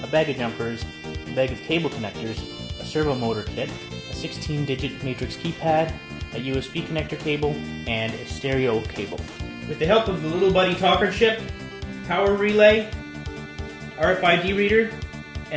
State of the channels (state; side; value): identical; both; correlation 1.00